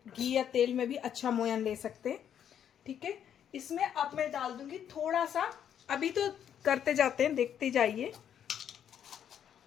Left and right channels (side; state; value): right; quieter; 9.2 dB